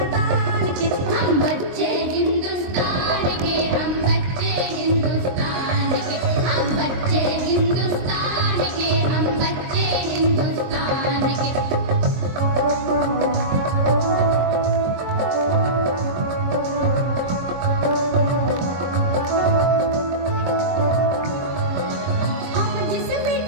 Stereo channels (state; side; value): late; left; 23 ms